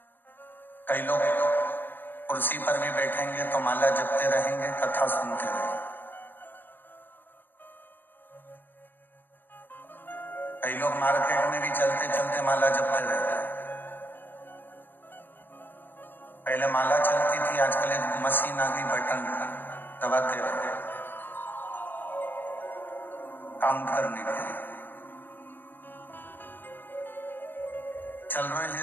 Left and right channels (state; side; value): late; right; 0.094 ms